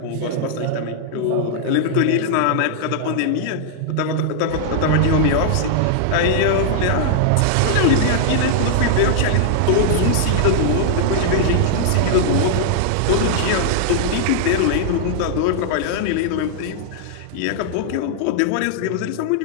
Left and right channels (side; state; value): both; different; correlation -0.01